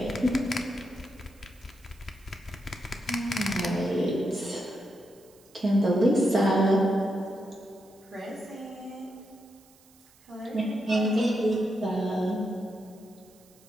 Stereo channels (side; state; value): right; noise; hiss, 28 dB below the sound